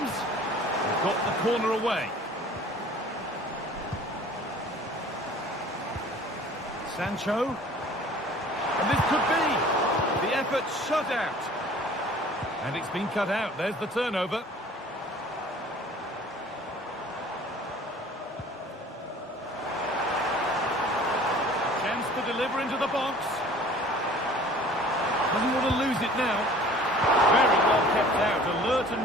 He's got the corner away. Sancho. And this could be. The effort shut out. And it's been cut out. There's the turnover. Chance to deliver into the box. Doesn't want to lose it now. Very well kept out. Alert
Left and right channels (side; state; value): both; normal; correlation 0.48